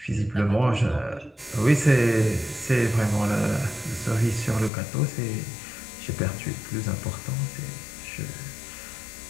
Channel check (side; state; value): right; drops out; at 4.7 s